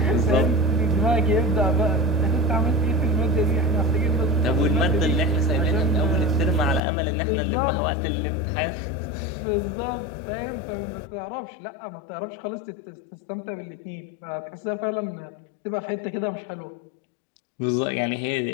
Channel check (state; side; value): drops out; right; at 6.8 s